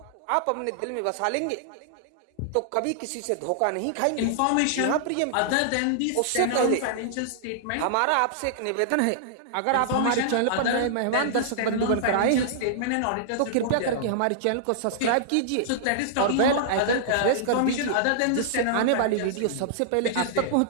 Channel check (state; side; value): different; both; correlation -0.01